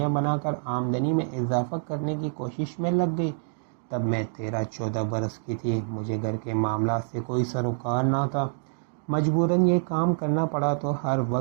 بنا کر آمدنی میں اضافہ کرنے کی کوشش میں لگ گئی۔ تب میں 13-14 برس کی تھی۔ مجھے گھر کے معاملات سے کوئی سروکار نہ تھا۔ مجبوراً یہ کام کرنا پڑا تو ہر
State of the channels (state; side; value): silent; left; digital silence